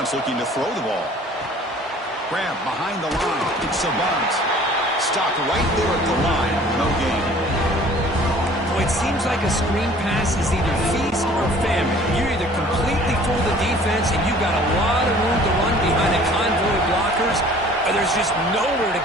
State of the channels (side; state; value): both; normal; correlation 0.51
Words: looking to throw the ball. Grab behind the line. It's a bunt. Stopped right there at the line. No gain. Well, it seems like a screen pass is either feast or famine. You either completely fool the defense and you've got a lot of room to run behind a convoy of blockers, or there's just nowhere to